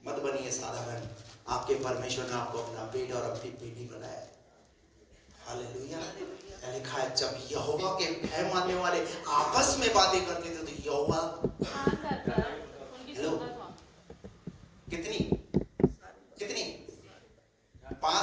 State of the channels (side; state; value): both; identical; correlation 1.00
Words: मत बनिए साधारण, आपके परमेश्वर ने आपको अपना बेटा और अपनी बेटी बनाया। हालेलुया। लिखा है जब यहोवा के भय मानने वाले आपस में बातें करते थे तो यहोवा कितनी